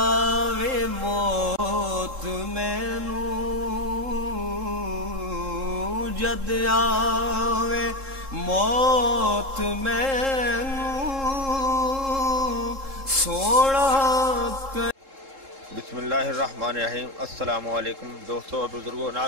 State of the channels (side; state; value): left; late; 3.7 ms